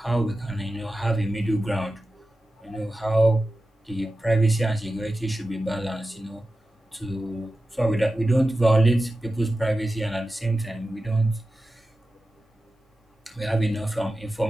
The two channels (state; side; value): normal; both; correlation 0.93